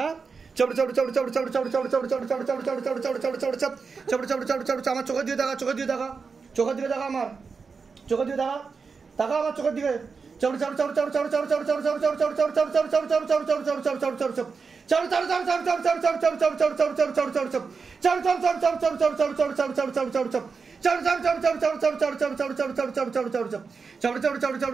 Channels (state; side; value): quieter; left; 5.1 dB